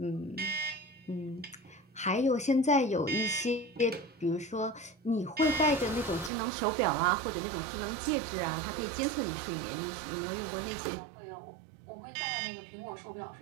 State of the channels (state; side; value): drops out; left; at 6.3 s